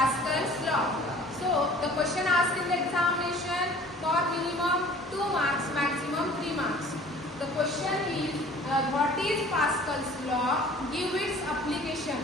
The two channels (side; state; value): both; normal; correlation 0.49